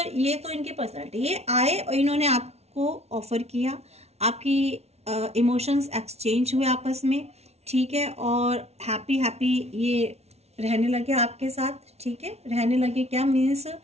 ये तो इनके पर्सनालिटी, ये आए और इन्होंने आपको ऑफर किया, आपकी इमोशंस एक्सचेंज हुए आपस में, ठीक है, और हैप्पी ये रहने लगे आपके साथ, ठीक है, रहने लगे। क्या मीन्स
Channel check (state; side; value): late; left; 0.31 ms